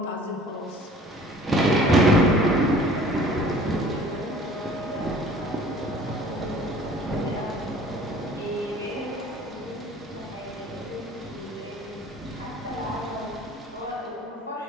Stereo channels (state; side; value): normal; both; correlation 0.50